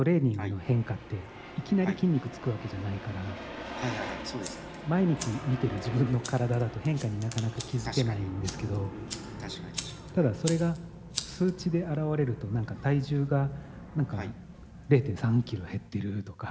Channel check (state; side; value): identical; both; correlation 1.00